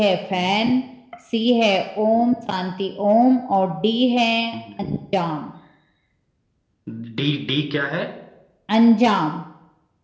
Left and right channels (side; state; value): both; identical; correlation 1.00